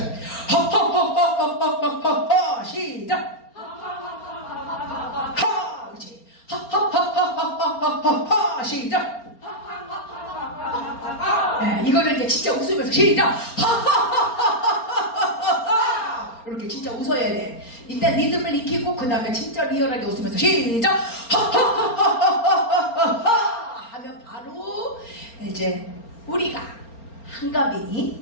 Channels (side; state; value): right; late; 4.3 ms